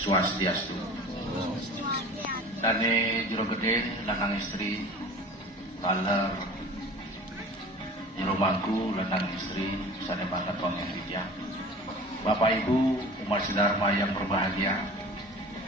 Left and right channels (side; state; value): both; normal; correlation 0.40